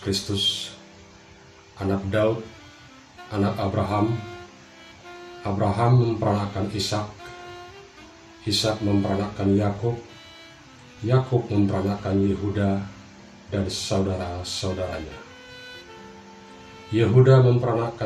Kristus, anak Daud, anak Abraham. Abraham memperanakkan Ishak, Ishak memperanakkan Yakub, Yakub memperanakkan Yehuda dan saudara-saudaranya. Yehuda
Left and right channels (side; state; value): both; identical; correlation 1.00